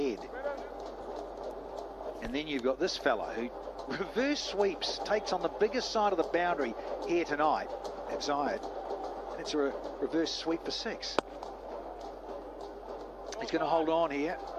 And then you've got this fella who reverse sweeps, takes on the biggest side of the boundary here tonight at Zayed. And it's a reverse sweep for 6. He's going to hold on here.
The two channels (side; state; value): both; identical; correlation 1.00